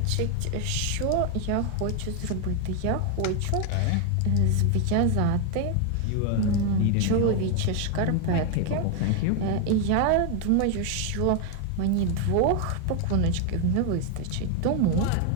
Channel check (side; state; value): both; different; correlation 0.01